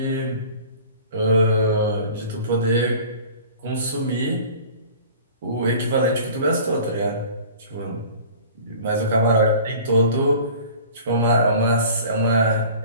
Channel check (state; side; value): inverted; both; correlation -0.44